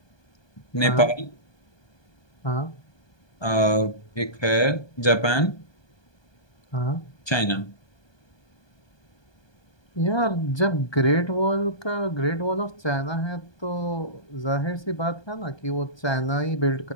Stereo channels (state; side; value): late; right; 1.2 ms